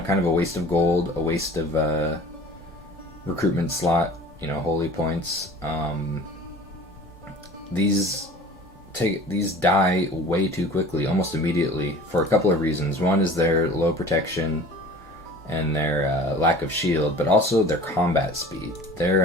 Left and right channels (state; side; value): normal; both; correlation 0.44